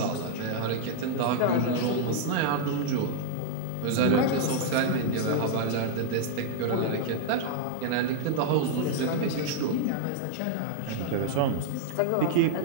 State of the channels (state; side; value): different; both; correlation 0.00